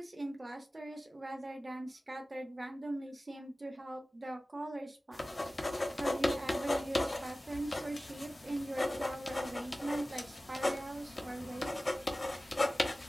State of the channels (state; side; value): normal; both; correlation 0.97